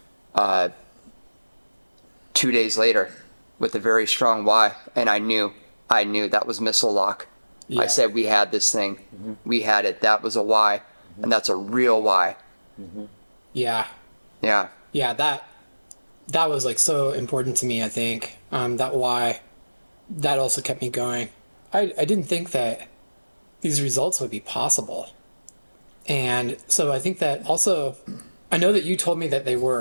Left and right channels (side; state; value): both; inverted; correlation -1.00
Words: 2 days later with a very strong why. And I knew that was missile lock. Yeah. I said, we had this thing. We had it. That was a why. And that's a real why. Yeah. Yeah. Yeah. That was like so important to me, I think. That why, that also kept me going. I didn't think that these results would be possible. And so I think that also, I know that you told me that they